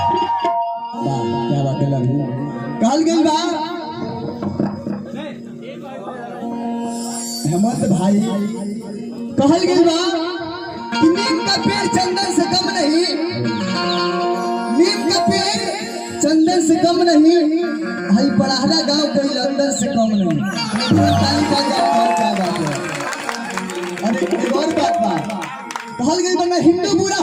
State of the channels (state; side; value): identical; both; correlation 1.00